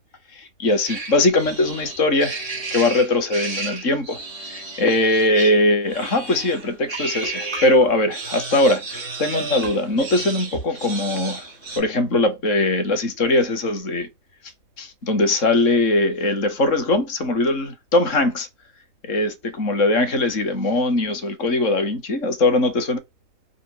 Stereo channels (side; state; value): right; late; 3.6 ms